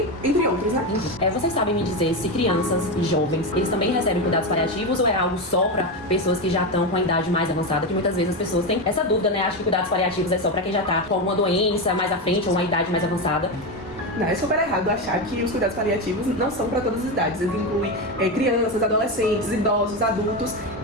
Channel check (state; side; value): normal; both; correlation 0.14